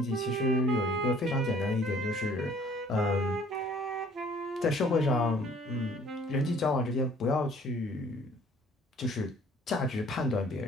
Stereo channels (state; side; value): normal; both; correlation 0.55